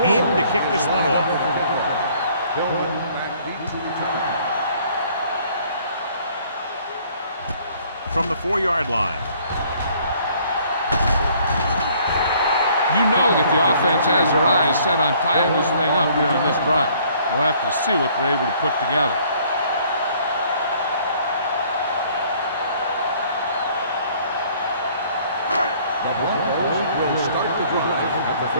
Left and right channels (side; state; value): both; inverted; correlation -0.59